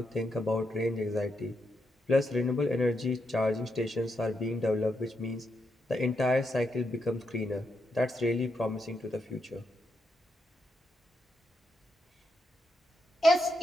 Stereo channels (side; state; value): both; normal; correlation 0.82